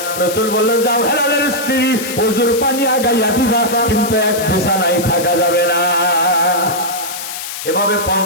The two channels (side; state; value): left; noise; hiss, 8 dB below the sound